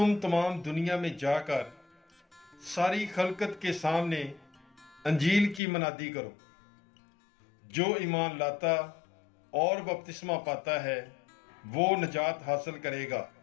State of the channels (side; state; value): right; drops out; at 5.6 s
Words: तमाम दुनिया में जाकर सारी खलकत के सामने अंजील की मनादी करो। जो ईमान लाता और बपतिस्मा पाता है वो नजात हासिल करेगा,